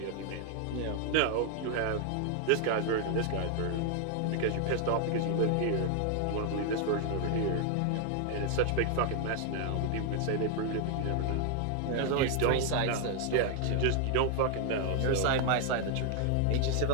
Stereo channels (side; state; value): both; different; correlation 0.00